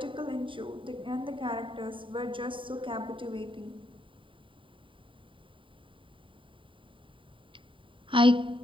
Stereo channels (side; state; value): left; late; 0.25 ms